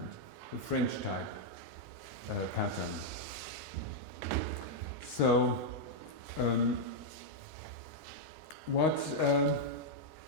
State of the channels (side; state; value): both; normal; correlation -0.04